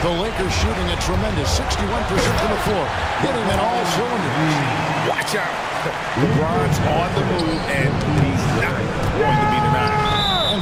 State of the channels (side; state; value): both; identical; correlation 1.00